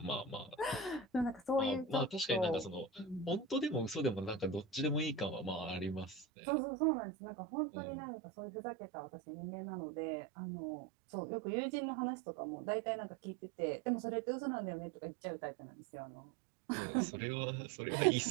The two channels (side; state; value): left; drops out; at 6.2 s